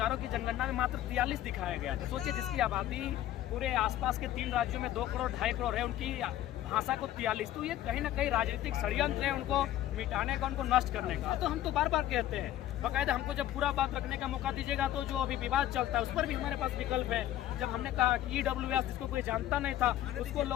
की जनगणना में मात्र 43 दिखाया गया था। सोचिए जिसकी आबादी पूरे आसपास के 3 राज्यों में 2 करोड़ 2.5 करोड़ है, उनकी भाषा को 43, तो ये कहीं ना कहीं राजनीतिक षड्यंत्र है उनको मिटाने का, उनको नष्ट करने का। तो हम तो बार बार कहते हैं, बाकायदा हमको जब पूरा बात रखने का मौका दीजिएगा तो जो अभी विवाद चलता है उस पर भी हमारे पास विकल्प है। जब हमने कहा कि EWS जिसको कोई जानता नहीं था उसको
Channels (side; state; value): right; quieter; 13.1 dB